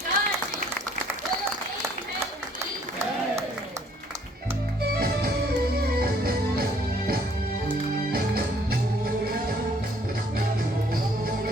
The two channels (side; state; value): both; normal; correlation 0.62